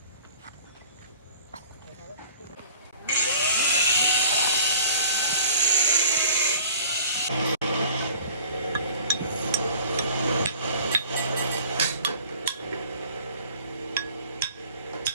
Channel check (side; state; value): both; inverted; correlation -0.48